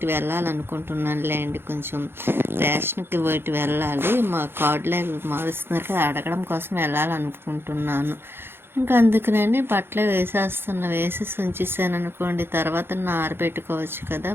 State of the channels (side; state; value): left; late; 0.11 ms